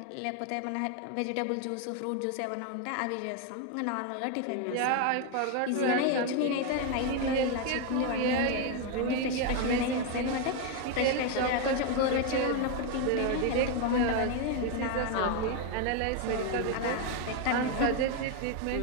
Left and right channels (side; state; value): both; different; correlation 0.01